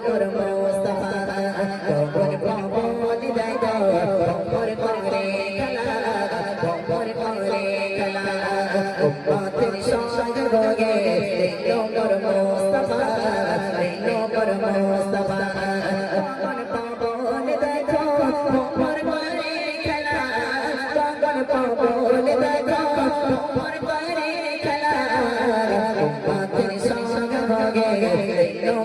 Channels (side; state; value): both; identical; correlation 1.00